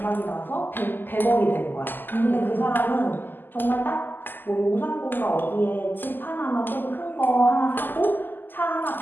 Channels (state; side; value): late; right; 0.091 ms